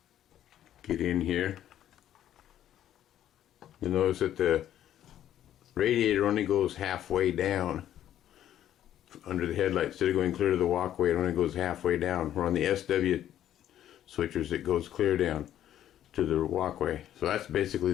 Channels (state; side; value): quieter; right; 11.4 dB